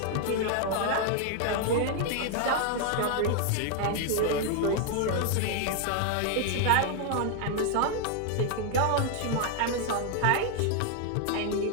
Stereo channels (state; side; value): different; both; correlation 0.00